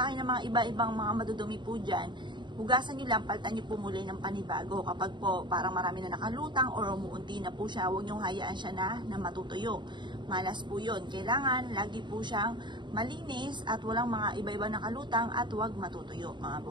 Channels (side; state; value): left; late; 0.22 ms